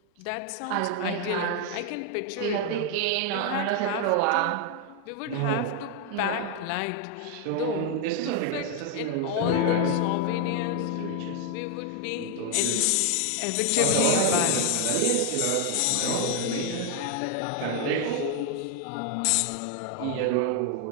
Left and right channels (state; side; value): different; both; correlation 0.01